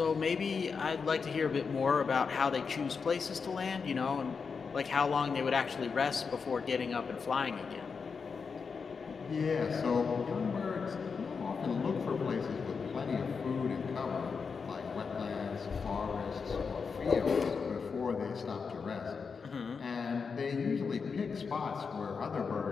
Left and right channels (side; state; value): right; quieter; 5.4 dB